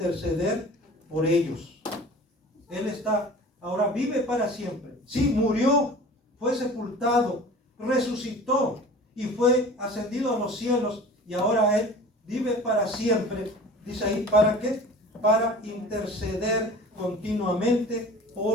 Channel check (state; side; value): normal; both; correlation 0.41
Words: por ellos. Él está, ahora vive para siempre. Sí, murió, fue sepultado, resucitó y fue ascendido a los cielos, y ahora Él vive para siempre. Dice ahí, ¿para qué? Para interceder continuamente